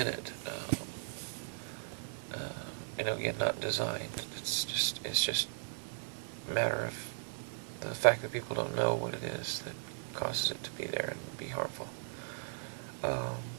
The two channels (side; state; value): left; silent; 53 dB below the other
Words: it. Again, not designed. It's just a matter of the fact that people don't know what it is that causes it to be there and be harmful.